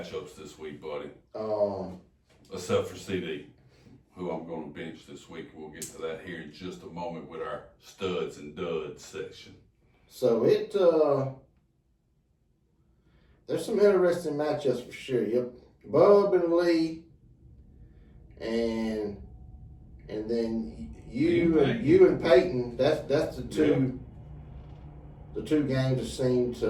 this week, buddy. Except for CD, who I'm going to bench this week. We'll get to that here in just a moment with our studs and duds section. So there's some interesting matchups for sure. Yep, Bub and Lee, and then you and Peyton. That's the two. The two games that seem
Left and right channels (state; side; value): identical; both; correlation 1.00